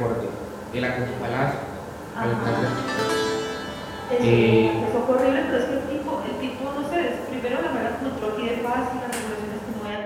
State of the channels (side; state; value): both; identical; correlation 1.00